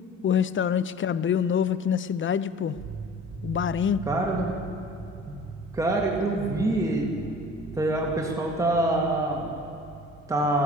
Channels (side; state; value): both; normal; correlation 0.44